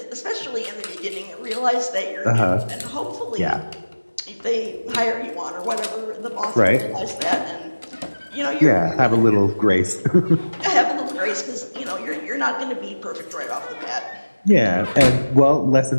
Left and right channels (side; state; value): both; inverted; correlation -1.00